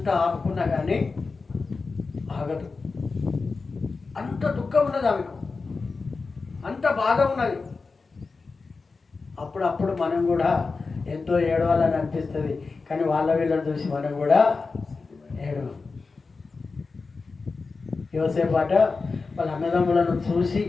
ఆపుకున్నా కానీ ఆగదు. అంత దుఃఖం ఉన్నది ఆమెకు, అంత బాధ ఉన్నది. అప్పుడప్పుడు మనం కూడా ఎంతో ఏడవాలని అనిపిస్తుంది, కానీ వాళ్ళ వీళ్ళని చూసి మనం కూడా ఏడవం. యోసేపాట వాళ్ళ అన్నదమ్ములను చూసి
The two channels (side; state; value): right; quieter; 4.3 dB